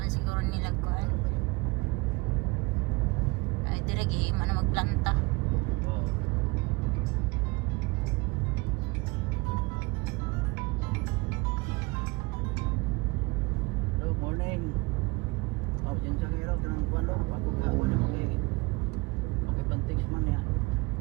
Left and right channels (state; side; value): quieter; left; 25.3 dB